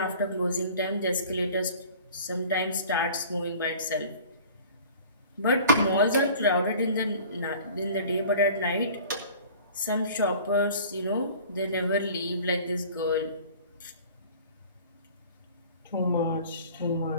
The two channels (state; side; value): inverted; both; correlation -0.46